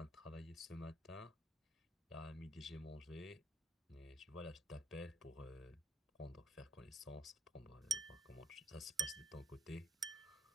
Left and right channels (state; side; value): normal; both; correlation 0.61